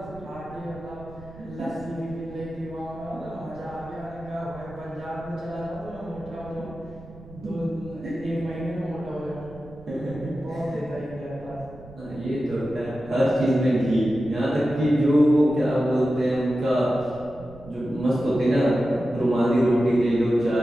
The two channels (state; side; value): noise; right; rumble, 18 dB below the sound